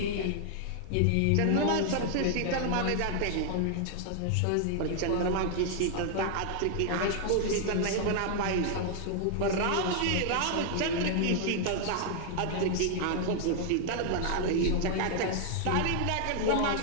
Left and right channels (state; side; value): different; both; correlation 0.00